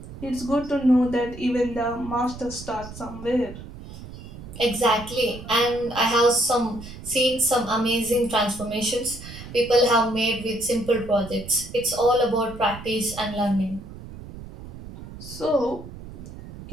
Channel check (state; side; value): noise; right; rumble, 14 dB below the sound